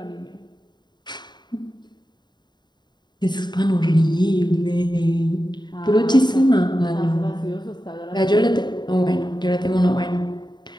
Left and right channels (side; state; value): right; late; 0.21 ms